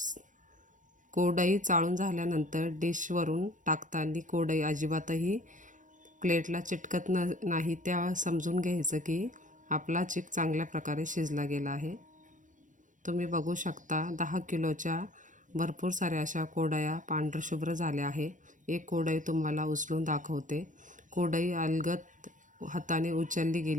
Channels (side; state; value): left; late; 0.37 ms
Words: कोडई चाळून झाल्यानंतर डिशवरून टाकताना कोडई अजिबातही प्लेटला चिटकत नाही, त्या समजून घ्यायचं की आपला चीक चांगल्या प्रकारे शिजला गेला आहे. तुम्ही बघू शकता 10 किलोच्या भरपूर साऱ्या अशा कोडया पांढरशुभ्र झाल्या आहे. एक कोडई तुम्हाला उचलून दाखवते. कोडई अलगद हाताने उचलली